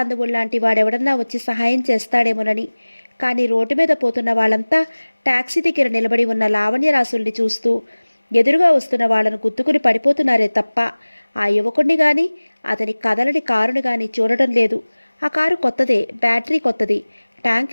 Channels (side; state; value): both; inverted; correlation -1.00